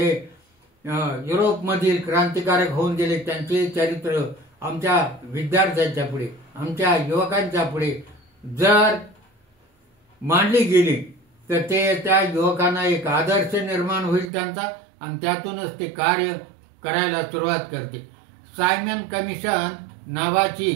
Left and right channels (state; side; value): drops out; left; at 14.3 s